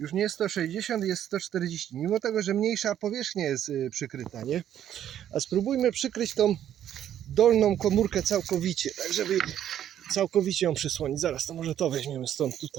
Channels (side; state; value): left; quieter; 10.7 dB